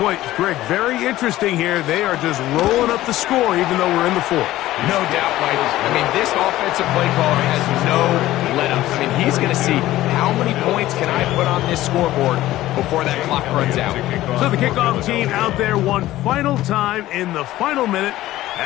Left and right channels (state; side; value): quieter; right; 15.5 dB